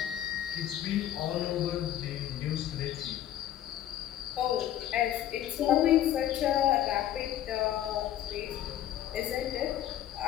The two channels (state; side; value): quieter; right; 11.9 dB